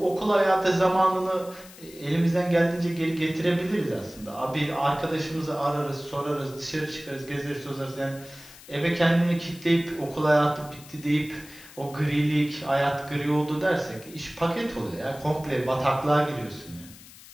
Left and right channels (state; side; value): noise; left; hiss, 20 dB below the sound